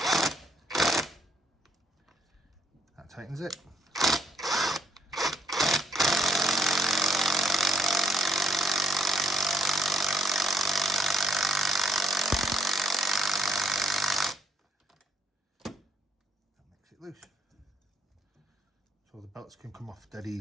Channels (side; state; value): both; normal; correlation 0.66